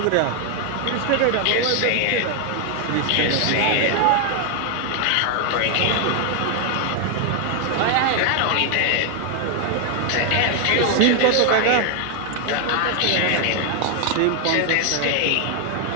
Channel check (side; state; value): both; different; correlation 0.00